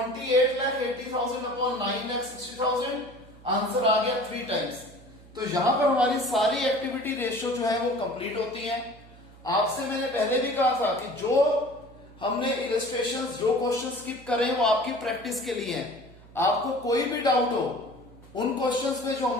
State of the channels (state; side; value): noise; right; hum, 22 dB below the sound